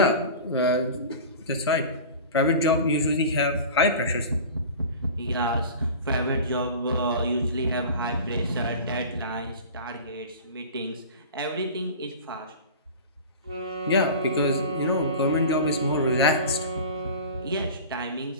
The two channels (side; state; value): both; inverted; correlation -0.36